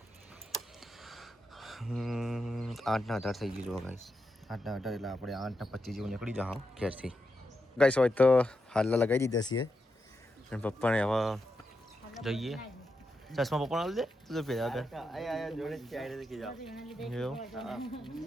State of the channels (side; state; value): both; normal; correlation 0.86